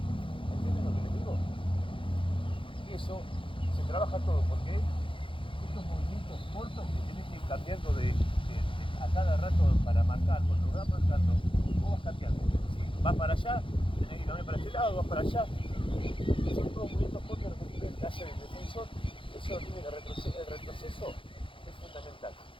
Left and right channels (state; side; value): late; right; 0.25 ms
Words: ¿Entienden lo que les digo? Y eso se trabaja todo porque estos movimientos cortos que tenés que ir cambiando a cada rato para marcar. Cuando vas marcando, vos vas cambiando. Si vas para allá, tenés que cambiar para este lado, vas para allá. Son todos movimientos cortos que hace el defensor, eso tiene que el retroceso es fundamental.